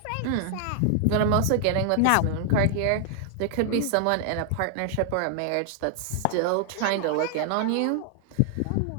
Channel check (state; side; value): different; both; correlation 0.00